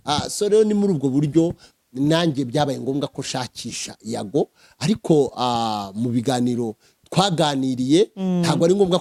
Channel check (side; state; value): both; identical; correlation 1.00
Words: so rero ni muri ubwo buryo nanjye byabaye ngombwa ko shakisha Yago ariko mu biganiro twaganiriye ntabwo ari ngombwa